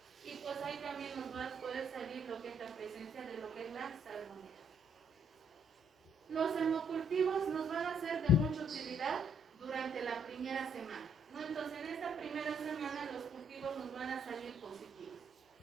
y pues ahí también nos va a poder salir lo que es la presencia de lo que es la salmonela. Los hemocultivos nos van a ser de mucha utilidad durante la primera semana, ¿no? Entonces en esta primera semana los cultivos nos van a salir positivos.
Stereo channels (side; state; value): both; normal; correlation 0.69